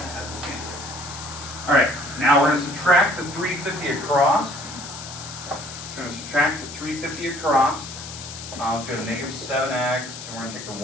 Alright, now we're going to subtract the 350 across. So we're going to subtract the 350 across. So we have negative 7x, and we're going to take the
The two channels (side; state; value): left; noise; hiss, 11 dB below the sound